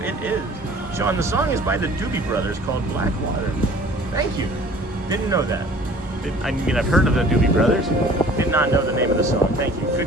It is. Sean, the song is by the Doobie Brothers called Black Water. Thank you. Didn't know that. I mean, I've heard of the Doobie Brothers. Did not know the name of the song. Thank you.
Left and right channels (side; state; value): both; normal; correlation 0.49